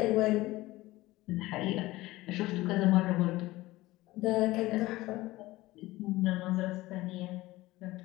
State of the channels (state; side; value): quieter; right; 18.5 dB